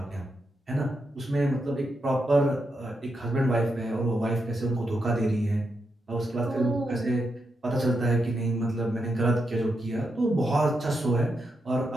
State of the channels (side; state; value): both; normal; correlation 0.84